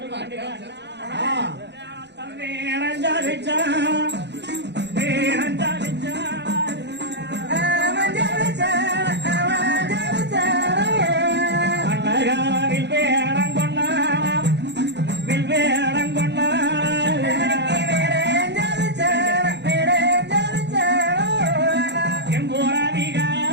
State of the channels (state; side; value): late; left; 0.50 ms